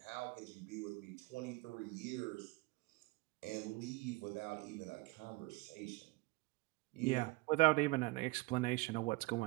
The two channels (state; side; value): quieter; left; 23.1 dB